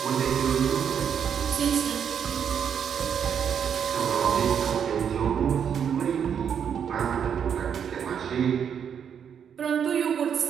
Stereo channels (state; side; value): quieter; left; 7.9 dB